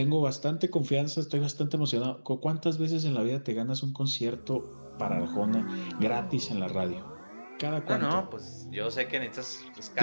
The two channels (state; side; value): inverted; both; correlation -1.00